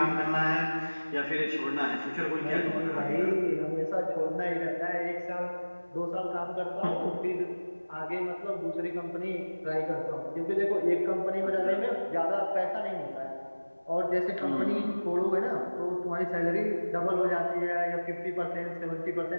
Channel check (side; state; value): both; inverted; correlation -1.00